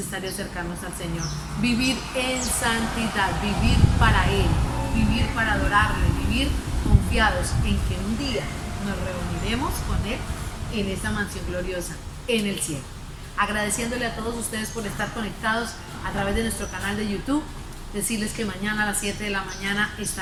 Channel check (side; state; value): both; identical; correlation 1.00